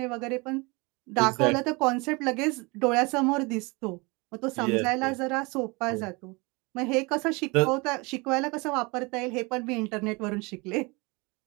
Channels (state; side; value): quieter; left; 27.0 dB